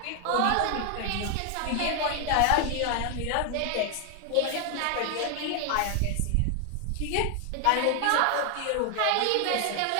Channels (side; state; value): both; different; correlation 0.00